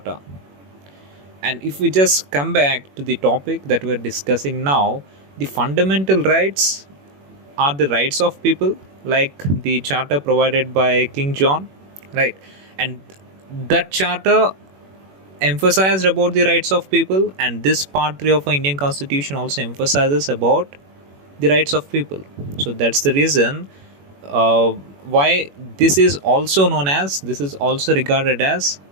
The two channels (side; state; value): left; late; 21 ms